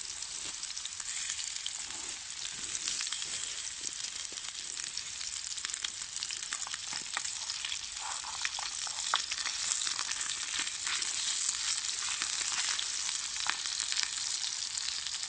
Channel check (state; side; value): identical; both; correlation 1.00